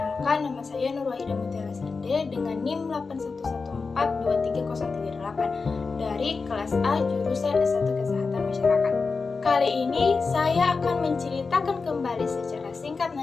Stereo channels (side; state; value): right; quieter; 4.5 dB